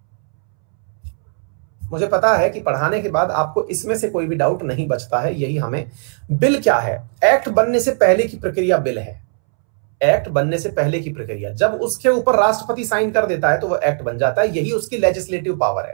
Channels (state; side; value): silent; left; 66 dB below the other